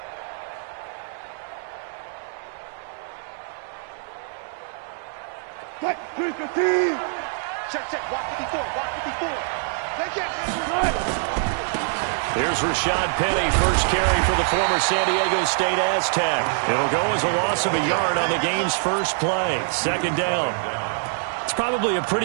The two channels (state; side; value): silent; left; 62 dB below the other